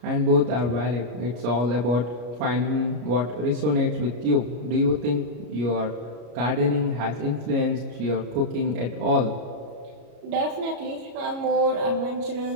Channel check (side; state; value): left; late; 33 ms